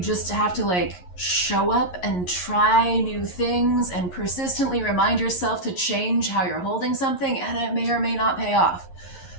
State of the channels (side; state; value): right; late; 11 ms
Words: have to like show up and try new things and persistently remind yourself to change how you're holding something, and it may or may not pay off.